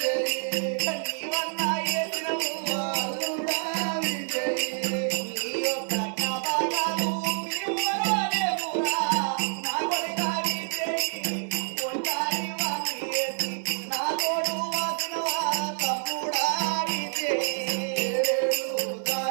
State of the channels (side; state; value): left; silent; 60 dB below the other